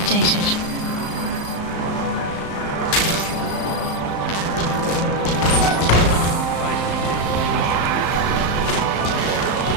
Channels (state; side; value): late; right; 35 ms